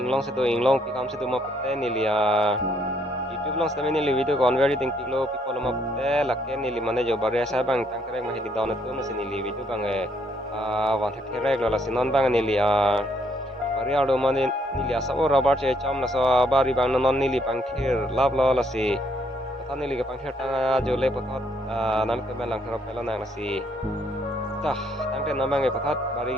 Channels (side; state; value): both; normal; correlation 0.70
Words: sedo inglong pikam sedo ma pate ni li YouTube lang sedo ni li video kon very ting piklo people ma pate la ke ni li mane jo bare sa bang tang krek ma hedi don tum la si ni li video bang wan thak therek la si non bang ni li Mariado mane nili asa ora barche cham na sa bari bang non nili pangkhir lab la si pata nili ke pangkhir tanga jole patot nam ke belang thara pela na si tah tangte namang e patat bari